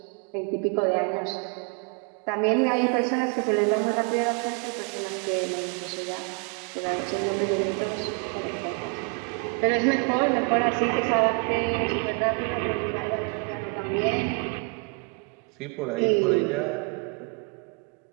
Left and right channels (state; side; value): quieter; left; 35.3 dB